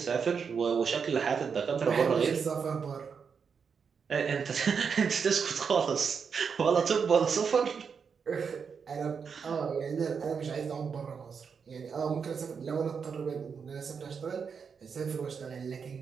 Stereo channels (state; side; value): quieter; left; 6.2 dB